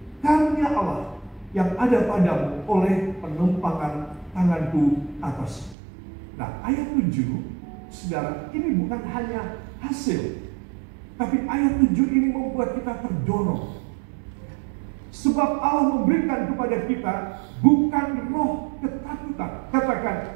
karunia Allah yang ada padamu oleh penumpangan tanganku atas. Nah, ayat 7, saudara, ini bukan hanya hasil, tapi ayat 7 ini membuat kita terdorong. Sebab Allah memberikan kepada kita bukan roh ketakutan. Katakan,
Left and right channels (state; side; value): drops out; left; at 5.8 s